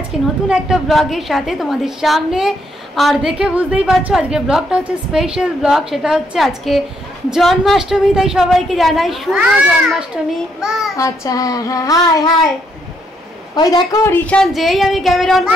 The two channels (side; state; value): both; normal; correlation 0.74